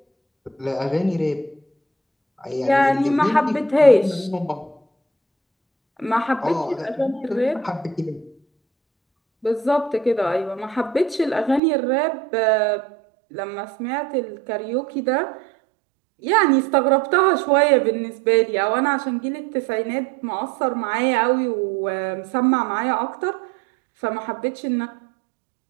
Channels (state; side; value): drops out; left; at 11.6 s